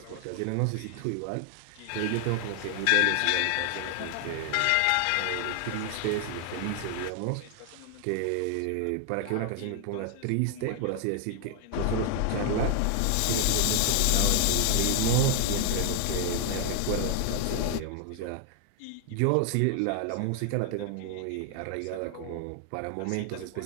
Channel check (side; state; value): both; different; correlation 0.00